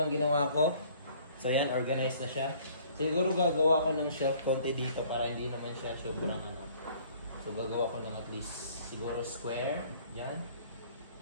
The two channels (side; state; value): both; inverted; correlation -0.56